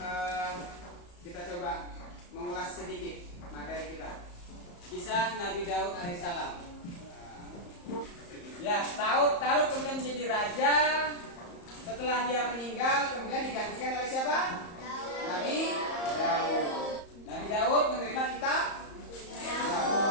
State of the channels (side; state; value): right; late; 34 ms